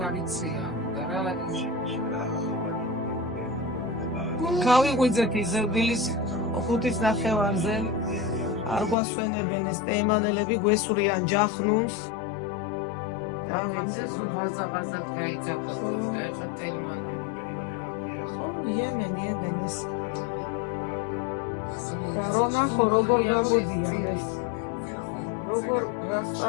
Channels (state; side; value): drops out; right; at 9.0 s